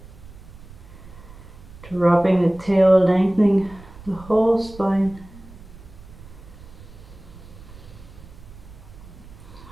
dropping the tail, lengthening the whole spine.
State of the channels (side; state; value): right; noise; rumble, 18 dB below the sound